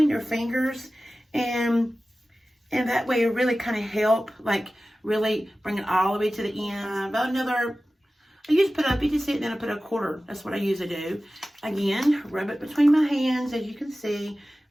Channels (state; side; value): normal; both; correlation 0.96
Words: your fingers, and that way it really kind of help, like really bring it all the way to the end. About another, I usually put up, you can see it, then I put a quarter. That's what I usually do. Again, rub it between my hands, as you can see.